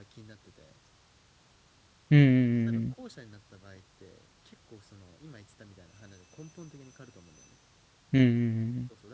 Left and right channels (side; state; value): both; identical; correlation 1.00